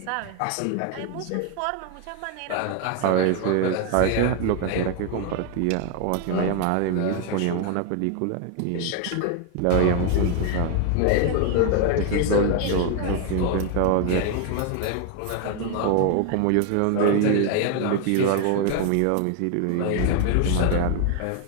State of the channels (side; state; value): both; different; correlation 0.01